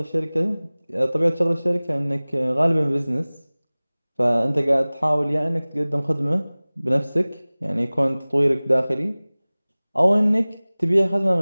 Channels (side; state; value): both; inverted; correlation -1.00